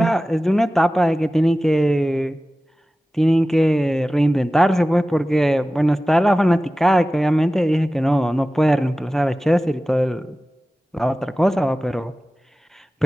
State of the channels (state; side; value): normal; both; correlation 0.96